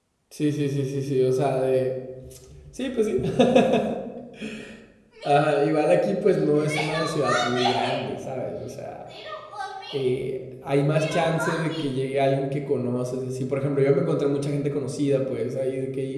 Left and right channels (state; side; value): identical; both; correlation 1.00